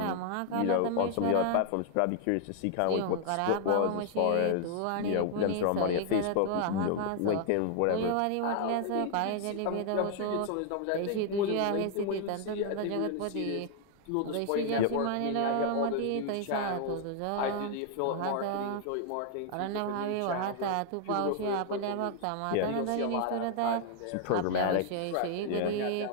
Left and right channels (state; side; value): different; both; correlation 0.00